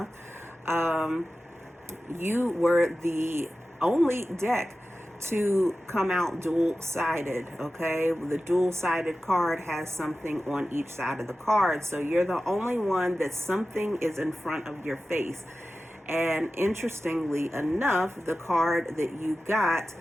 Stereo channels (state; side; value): normal; both; correlation 0.94